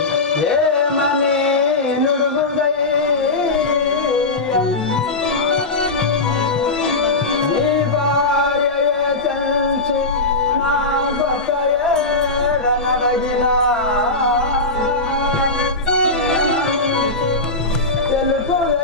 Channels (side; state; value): right; quieter; 3.2 dB